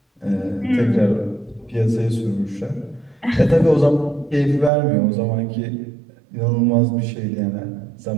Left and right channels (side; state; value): left; drops out; at 4.7 s